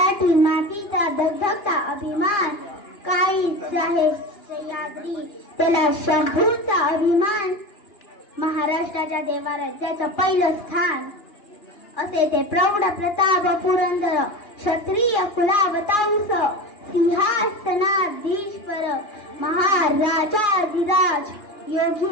मातीचा धगधगता अभिमान. काहीच आहे सह्याद्री त्याला शंभूचा अभिमान. महाराष्ट्राच्या देवाराज्याचं पहिलं स्थान असे ते प्रौढ प्रताप पुरंदर. क्षत्रिय कुलावतांस सिंहासनाधीश्वर, महाराजाधिराज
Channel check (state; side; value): late; right; 2.4 ms